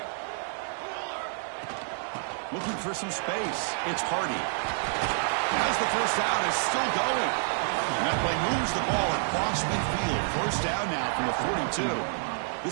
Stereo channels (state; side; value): silent; left; 59 dB below the other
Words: Looking for some space. It's Hardy. As the first down is still going. And that play moves the ball across midfield. First down now from the 42.